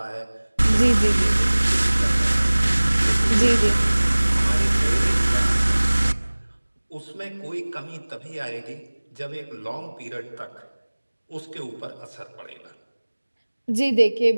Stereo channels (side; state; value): both; inverted; correlation -1.00